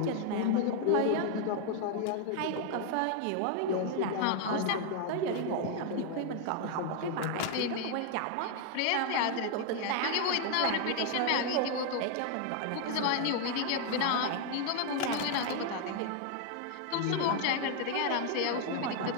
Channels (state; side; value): different; both; correlation 0.00